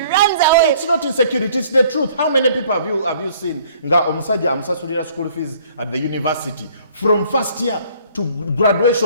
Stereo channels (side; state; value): both; inverted; correlation -0.57